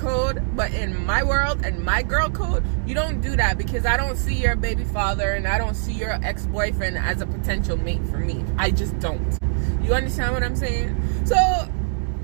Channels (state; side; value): silent; left; digital silence